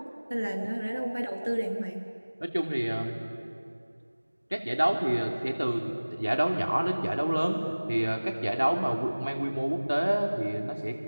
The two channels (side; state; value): both; inverted; correlation -1.00